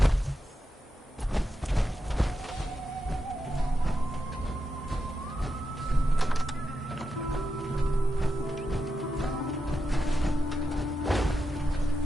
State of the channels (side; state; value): both; normal; correlation 0.87